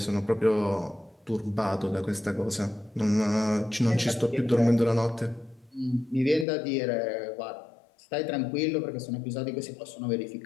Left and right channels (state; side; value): drops out; right; at 6.5 s